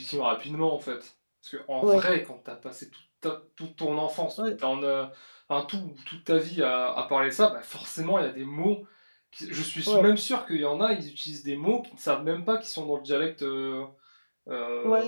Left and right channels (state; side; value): inverted; both; correlation -1.00